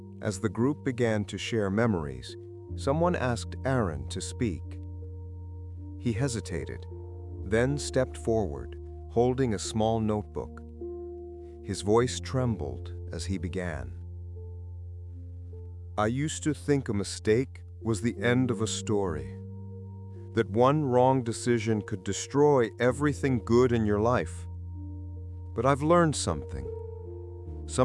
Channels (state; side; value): identical; both; correlation 1.00